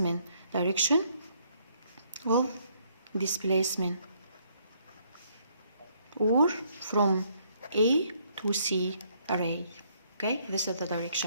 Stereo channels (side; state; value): both; inverted; correlation -0.68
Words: Direction of displacement, or from A to C array. Okay, this is the